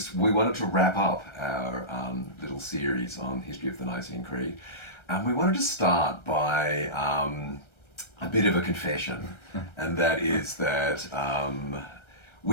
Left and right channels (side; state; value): right; late; 1.3 ms